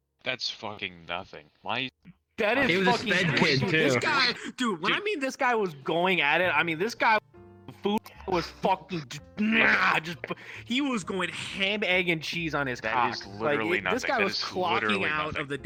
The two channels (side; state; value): both; identical; correlation 1.00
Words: That's fucking nothing. Why? That is he was fucking a sped kid too. This guy, dude. When I mean this guy was going at it, I mean this guy, food was fucking he was going ham, egg, and cheese on his cock. Is literally like, nothing. This guy that was clocking out of the